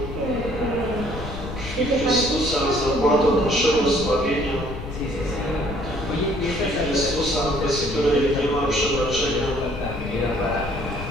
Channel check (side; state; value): left; noise; rumble, 9 dB below the sound